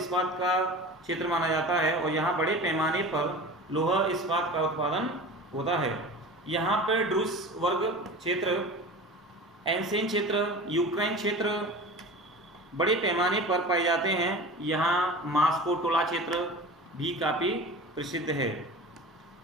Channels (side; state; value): both; normal; correlation 0.35